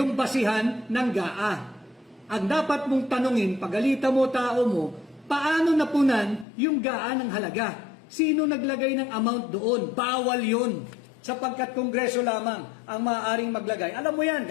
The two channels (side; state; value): right; drops out; at 6.5 s